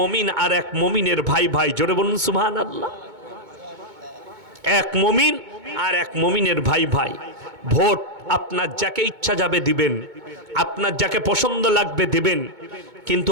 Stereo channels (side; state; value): left; late; 2.2 ms